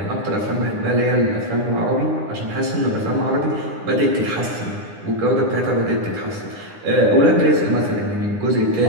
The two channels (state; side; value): late; left; 9.9 ms